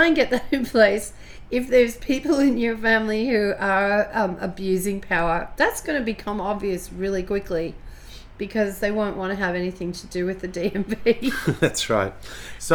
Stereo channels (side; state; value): both; identical; correlation 1.00